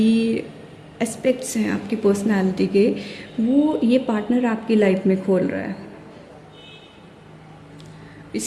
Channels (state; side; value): identical; both; correlation 1.00